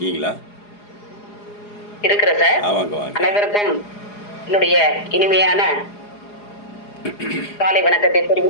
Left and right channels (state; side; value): late; right; 4.8 ms